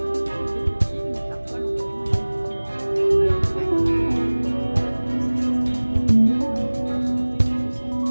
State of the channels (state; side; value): inverted; both; correlation -1.00